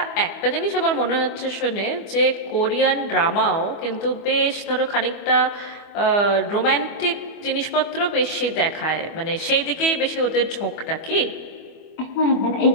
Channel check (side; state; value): right; late; 25 ms